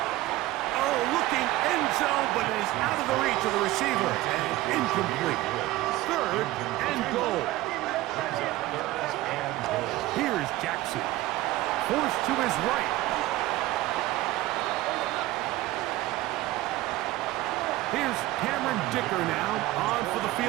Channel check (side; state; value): left; quieter; 17.0 dB